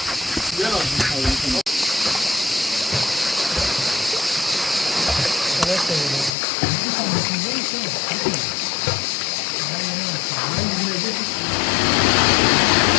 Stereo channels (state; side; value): drops out; right; at 6.3 s